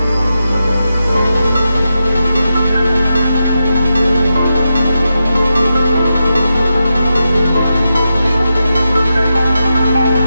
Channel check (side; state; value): both; inverted; correlation -0.89